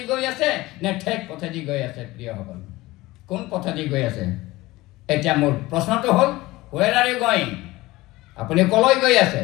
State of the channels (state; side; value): quieter; right; 19.3 dB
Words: গৈ আছে নে ঠেক পথেদি গৈ আছে প্ৰিয়সকল কোন পথেদি গৈ আছে এতিয়া মোৰ প্ৰশ্নটো হ'ল where are you going আপুনি কলৈ গৈ আছে